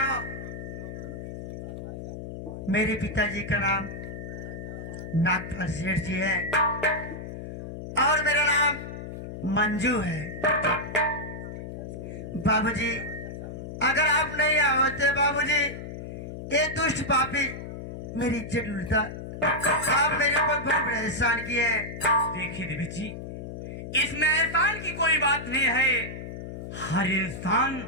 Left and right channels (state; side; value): noise; left; hum, 9 dB below the sound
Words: मेरे पिताजी का नाम नागपाल सेठ जी है और मेरा नाम मंजू है। बाबूजी, अगर आप नहीं होते बाबूजी, ये दुष्ट पापी मेरी इज्जत लूटता। आप मेरे ऊपर बहुत बड़ा एहसान किए। देखिए देवी जी, इसमें एहसान की कोई बात नहीं है। हर इंसान,